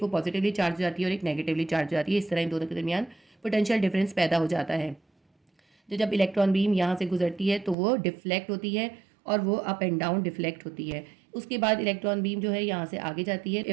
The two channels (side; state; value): left; drops out; at 7.8 s